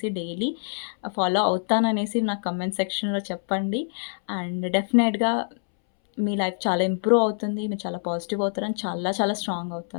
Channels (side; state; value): right; silent; 61 dB below the other